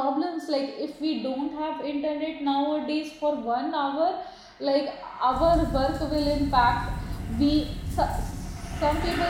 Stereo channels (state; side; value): identical; both; correlation 1.00